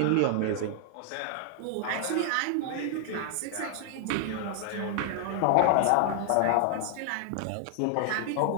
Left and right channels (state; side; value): different; both; correlation 0.00